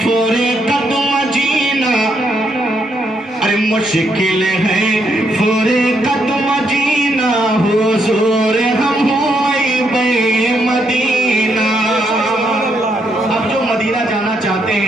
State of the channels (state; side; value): normal; both; correlation 0.76